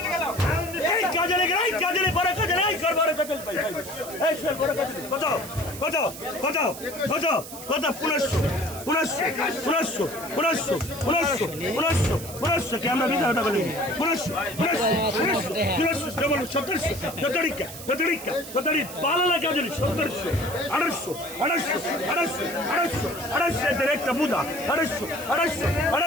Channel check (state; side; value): noise; right; hiss, 12 dB below the sound